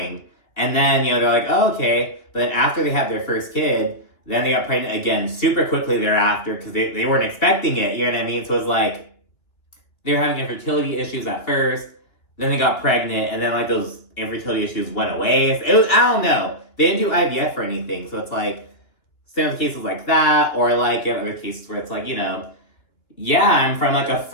and then, you know, they're like, oh, okay, but then after they had their first kid, then they got pregnant again super quickly thereafter, because they weren't expecting it, you know what I mean? So it was like, they were having infertility issues at first, then they got pregnant, and then like those infertility issues went away. It was, I don't know. They didn't do IVF or anything, so it's like, same with cases like that, or like in other cases where it's like, you know, yeah, I'm from like a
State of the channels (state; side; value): late; right; 2.9 ms